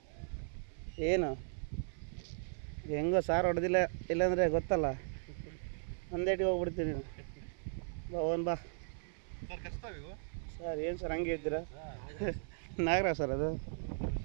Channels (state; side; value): silent; left; 53 dB below the other